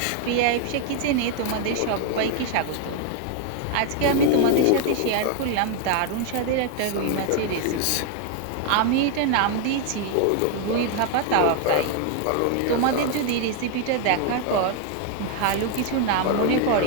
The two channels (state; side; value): different; both; correlation 0.00